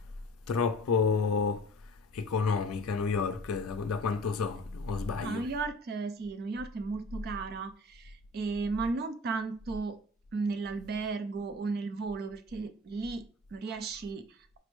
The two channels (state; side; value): normal; both; correlation 0.43